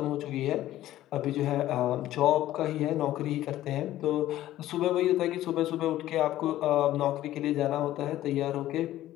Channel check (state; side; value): quieter; right; 14.1 dB